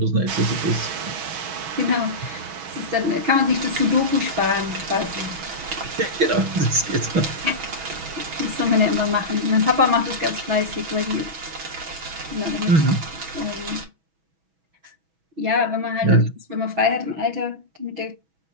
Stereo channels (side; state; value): left; late; 6.2 ms